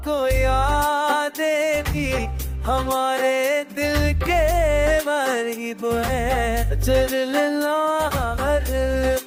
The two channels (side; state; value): both; identical; correlation 1.00